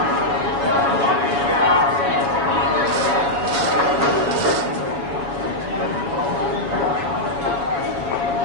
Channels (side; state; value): left; late; 7.2 ms